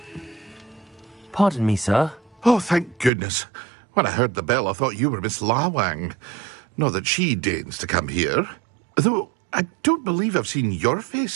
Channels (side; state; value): left; drops out; at 3.1 s